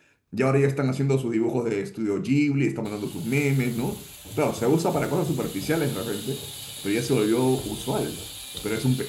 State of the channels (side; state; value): both; identical; correlation 1.00